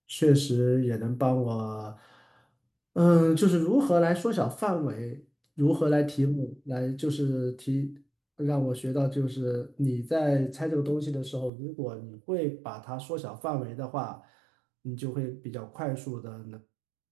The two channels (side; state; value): left; drops out; at 11.5 s